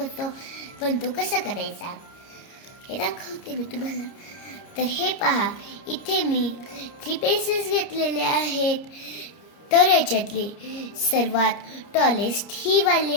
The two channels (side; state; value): right; late; 30 ms